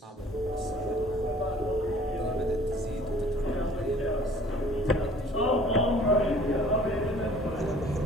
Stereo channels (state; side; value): normal; both; correlation 0.52